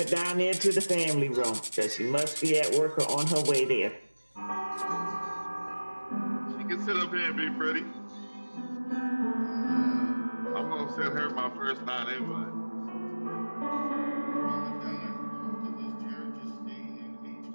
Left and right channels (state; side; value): inverted; both; correlation -1.00